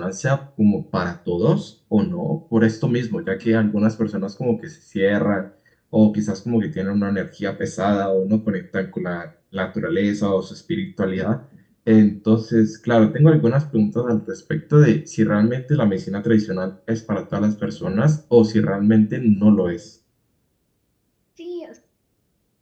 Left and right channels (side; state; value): both; identical; correlation 1.00